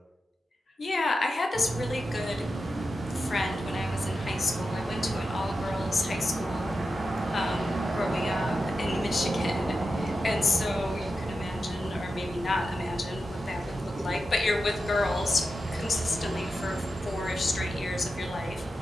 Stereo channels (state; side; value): normal; both; correlation 0.90